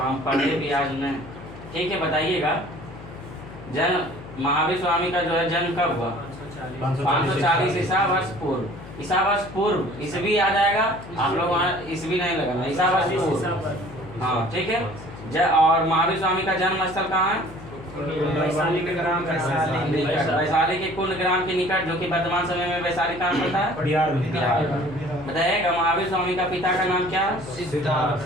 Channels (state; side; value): noise; left; hum, 15 dB below the sound